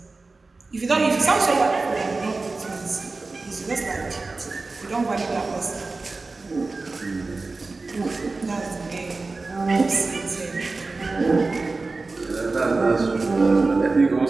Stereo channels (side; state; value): left; quieter; 3.7 dB